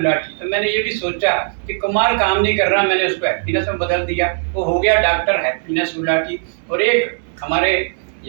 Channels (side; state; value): left; silent; digital silence